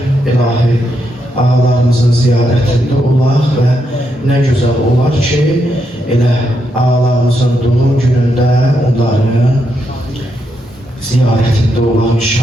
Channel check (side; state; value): both; normal; correlation 0.81